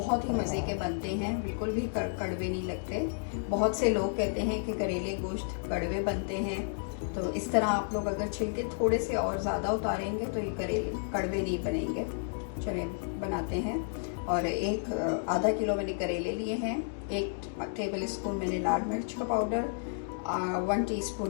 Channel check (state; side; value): silent; right; digital silence